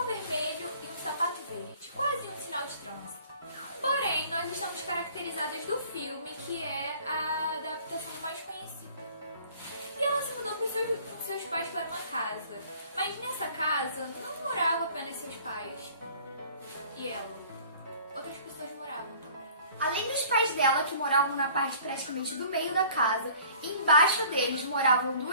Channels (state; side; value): inverted; both; correlation -0.51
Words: vermelho e um sapato verde, quase um sinal de trânsito. Porém, nós estamos caracterizadas do filme, que é a adaptação mais conhecida. E ela se mudou com seus pais para uma casa, mas nessa casa não moravam apenas seus pais e ela. Outras pessoas moravam também. Além dos pais dela, que moravam na parte praticamente do meio da casa, embaixo deles moravam